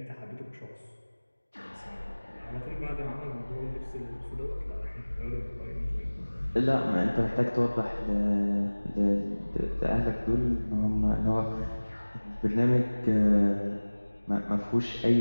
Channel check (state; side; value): inverted; both; correlation -1.00